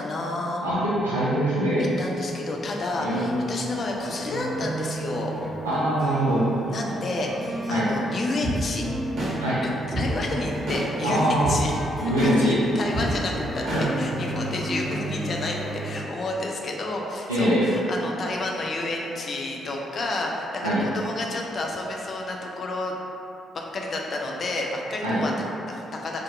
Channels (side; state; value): both; normal; correlation 0.72